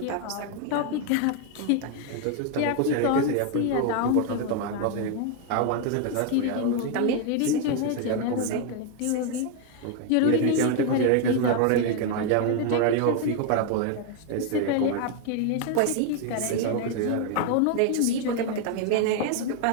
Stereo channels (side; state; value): both; different; correlation 0.01